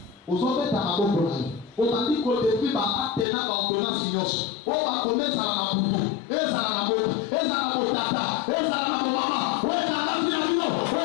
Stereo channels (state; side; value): drops out; right; at 3.2 s